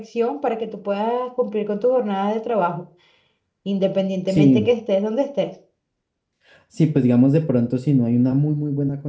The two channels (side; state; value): both; identical; correlation 1.00